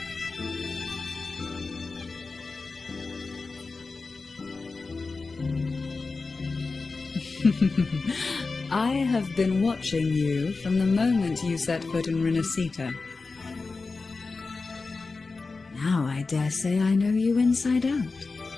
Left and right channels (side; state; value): right; quieter; 4.0 dB